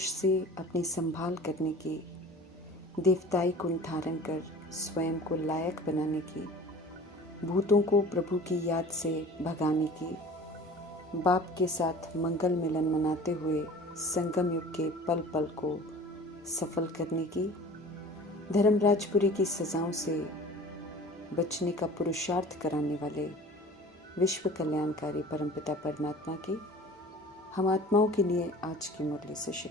से अपनी संभाल करने की, देवताई गुण धारण कर स्वयं को लायक बनाने की, भूतों को प्रभु की याद से भगाने की, बाप के साथ मंगल मिलन मनाते हुए संगम युग के पल पल को सफल करने की, धर्मराजपुरी की सजाओं से बचने का पुरुषार्थ कराने वाले विश्व कल्याणकारी परमपिता परमात्मा की हम आत्माओं के लिए आज की मुरली से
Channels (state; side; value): normal; both; correlation 0.43